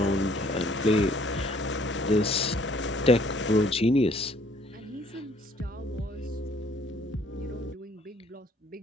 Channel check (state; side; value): normal; both; correlation 0.61